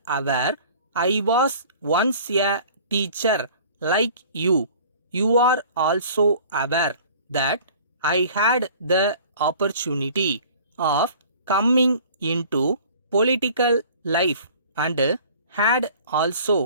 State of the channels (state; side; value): inverted; both; correlation -0.48